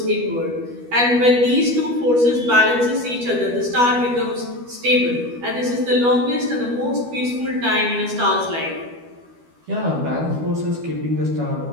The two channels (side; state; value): left; late; 12 ms